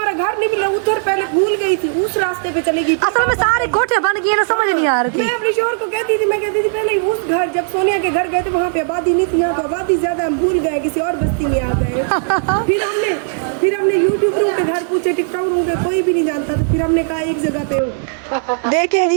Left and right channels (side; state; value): left; silent; 64 dB below the other